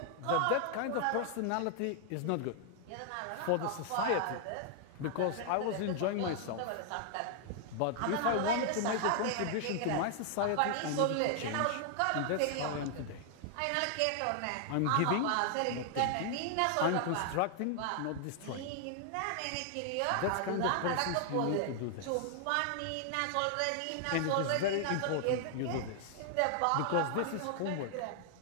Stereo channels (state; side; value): different; both; correlation 0.00